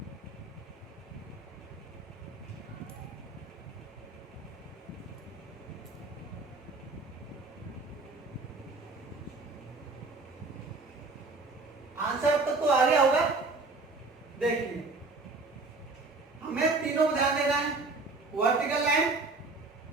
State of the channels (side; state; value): left; quieter; 3.6 dB